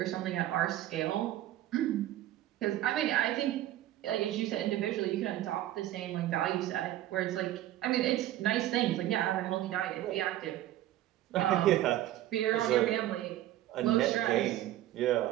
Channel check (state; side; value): quieter; left; 13.8 dB